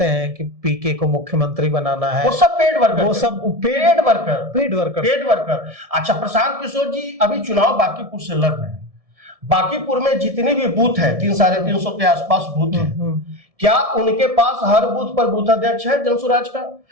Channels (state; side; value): late; left; 1.7 ms